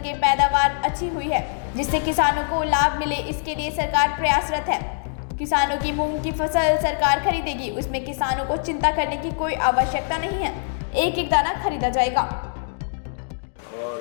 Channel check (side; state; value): right; silent; digital silence